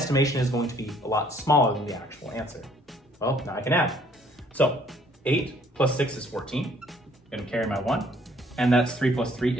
is going to be a lot smaller than the actual answer. Well, now I can add. So 8 plus 6 is 14. I'm going to carry my 1, and that's 3 plus 3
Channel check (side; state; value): both; normal; correlation 0.61